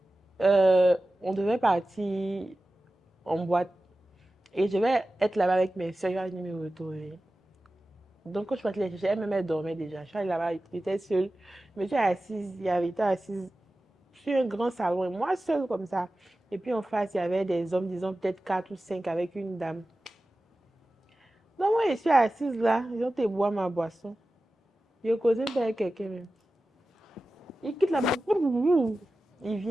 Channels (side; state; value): both; normal; correlation 0.95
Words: On devait partir en boîte. Et je vais être là-bas avec mes soeurs, je vais venir me retrouver. Donc, quand je suis partie les chercher, elle-même, elle dormait déjà. Je suis allée là-bas, j'étais seule. Je me suis assise, il y avait été assise sur un grand salon, et moi seule comme ça. Et puis en face, il y avait des hommes, disons peut-être 4 ou 5 avec une dame. Donc, moi, je suis assise là, ils ont été boire ma boisson. Je causais avec quelqu'un même. Il quitte la maison. Il